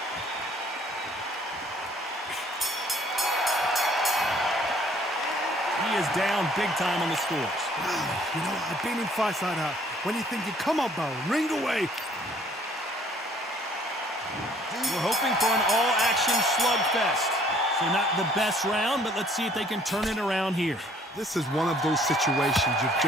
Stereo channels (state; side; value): normal; both; correlation 0.59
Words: He is down big time on the scores. Wow, you know, I've been in fights like that. When you're thinking, come on, Bowe, ring away. We're hoping for an all-action slugfest. So not the best round, but let's see if they can turn it around here. This is one of those situations. You've